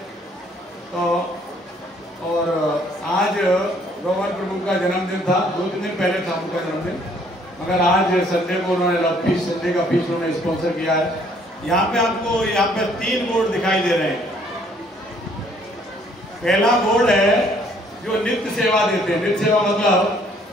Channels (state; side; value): normal; both; correlation 0.63